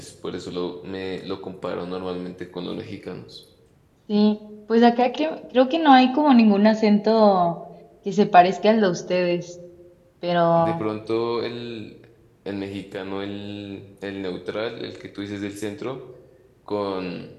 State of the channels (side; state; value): both; identical; correlation 1.00